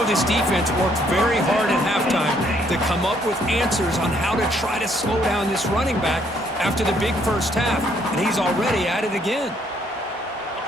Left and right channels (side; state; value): both; normal; correlation 0.68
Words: this defense worked very hard at halftime to come up with answers on how to try to slow down this running back after the big first half, and he's already at it again.